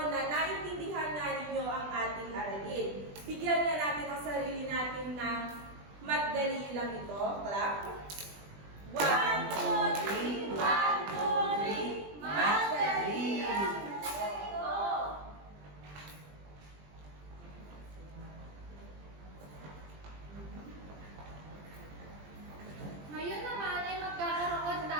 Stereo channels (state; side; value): late; left; 20 ms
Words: naintindihan na ninyo ang ating aralin. Bigyan na natin ang sarili natin ng madali lang ito. Clap. 1, 2, 3, 1, 2, 3, madali! Ngayon naman ay magkakaroon